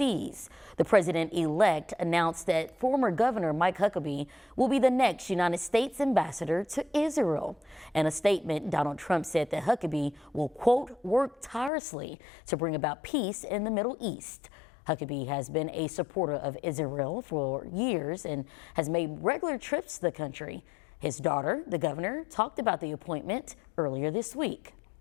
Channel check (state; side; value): drops out; right; at 11.7 s